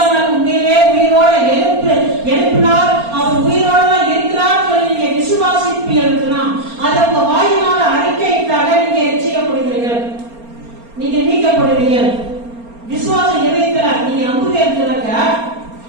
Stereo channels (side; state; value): left; late; 4.3 ms